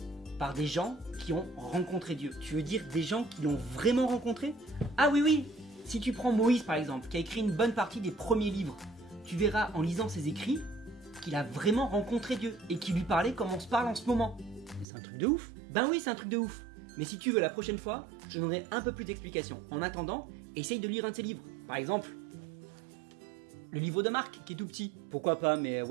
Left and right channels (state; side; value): drops out; left; at 14.9 s